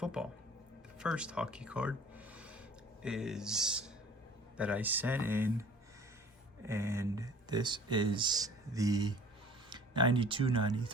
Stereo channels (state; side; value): normal; both; correlation 0.49